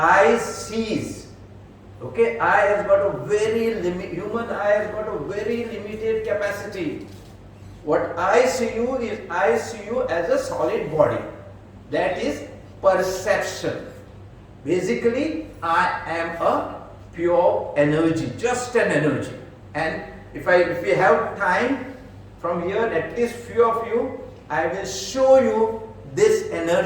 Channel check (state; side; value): identical; both; correlation 1.00